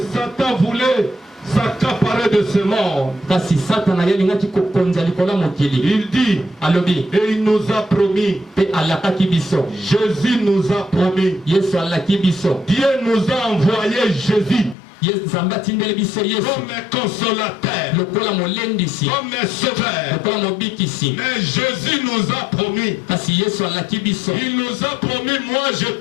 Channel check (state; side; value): drops out; right; at 14.8 s